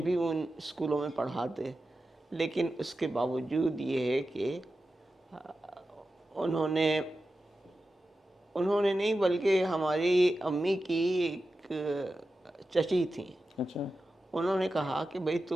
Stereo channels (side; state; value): both; normal; correlation 0.92